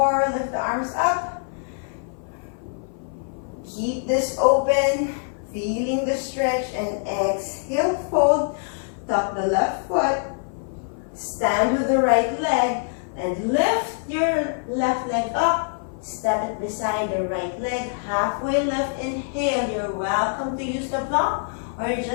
lift the arms up. Keep this open. Feeling the stretch. And exhale, fold. Tuck the left foot. Stand with the right leg. And lift your left leg up. Step it beside the right leg. Halfway lift. Inhale. You're welcome to use the block or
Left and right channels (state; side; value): silent; right; 56 dB below the other